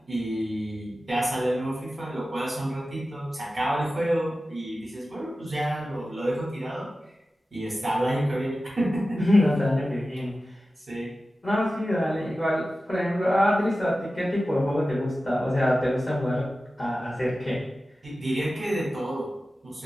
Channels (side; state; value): both; normal; correlation 0.94